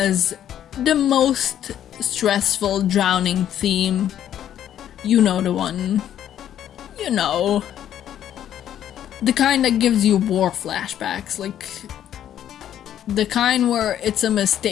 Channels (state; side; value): quieter; right; 10.7 dB